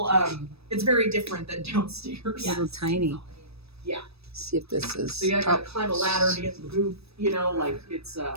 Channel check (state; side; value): late; left; 0.78 ms